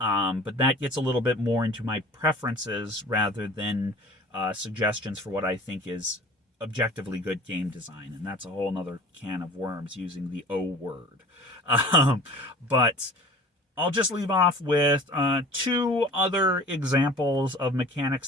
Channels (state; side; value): normal; both; correlation 0.44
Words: that gets a little bit more into my preferences rather than suggestions for what I think is objectively good game design. And that's a whole nother can of worms using the O word. But I'll just leave off with two other examples of